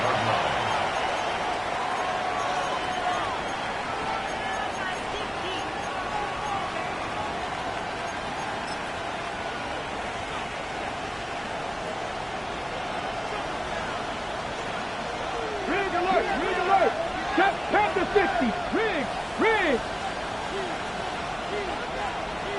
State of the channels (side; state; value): both; identical; correlation 1.00